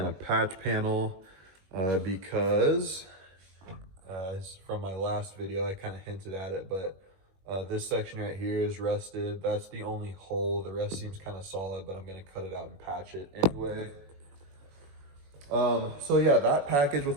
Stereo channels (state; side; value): late; left; 21 ms